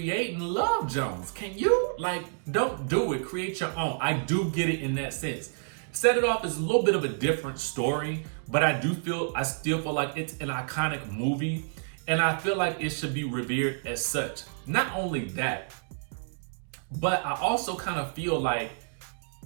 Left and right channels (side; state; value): left; silent; digital silence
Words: Love Jones. Can you? Like, don't do it. Create your own. I do get it in that sense. Set It Off is a little bit of a different story, but I still feel like it's an iconic movie, and I feel like it should be revered as such. Not only that, but I also kind of feel like,